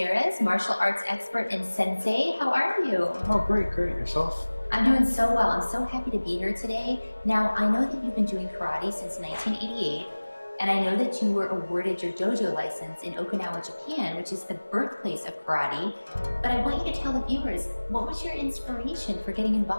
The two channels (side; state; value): both; inverted; correlation -1.00